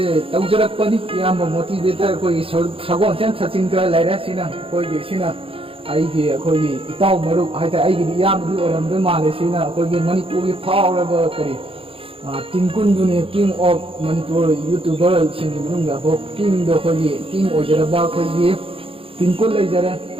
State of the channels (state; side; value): late; left; 0.27 ms